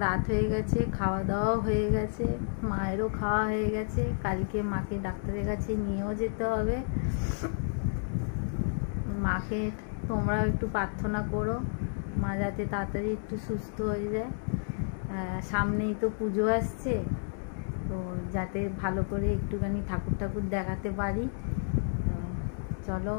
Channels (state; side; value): silent; right; digital silence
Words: রাত হয়ে গেছে, খাওয়া দাওয়া হয়ে গেছে, মায়েরও খাওয়া হয়ে গেছে। কালকে মাকে ডাক্তারের কাছে নিয়েও যেতে হবে। মাকে তোমরাও একটু প্রার্থনা করো, মা যাতে তাড়াতাড়ি একটু সুস্থ হয়ে যায়। সামনেই তো পুজো আসছে, তো যাতে ভালো করে একটুখানি ঠাকুর দেখাতে পারি। চলো,